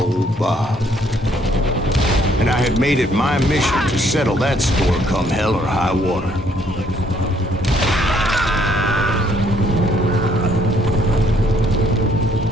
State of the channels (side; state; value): both; normal; correlation 0.66